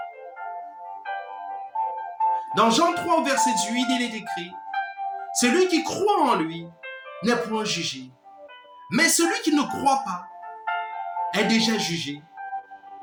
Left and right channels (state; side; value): identical; both; correlation 1.00